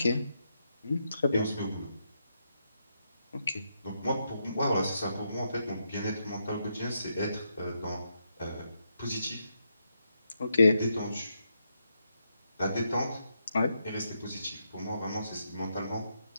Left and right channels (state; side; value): inverted; both; correlation -0.82